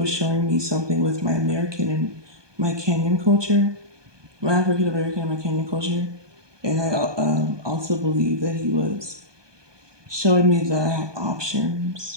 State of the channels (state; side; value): late; left; 1.2 ms